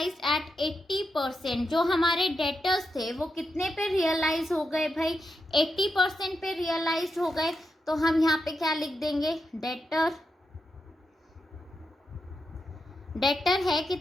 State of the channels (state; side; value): normal; both; correlation 0.86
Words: at 80%। जो हमारे डेटर्स थे वो कितने पे रियलाइज हो गए भाई, 80% पे रियलाइज हो गए। तो हम यहाँ पे क्या लिख देंगे, डेटर है